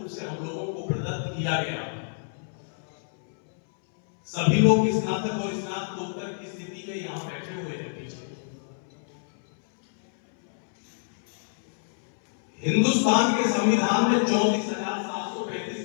से हम लोगों को प्रदत्त किया गया, सभी लोग स्नातक और स्नातकोत्तर की स्थिति में यहां बैठे हुए हैं पीछे। हिंदुस्तान के संविधान में 34,735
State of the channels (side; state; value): right; silent; 60 dB below the other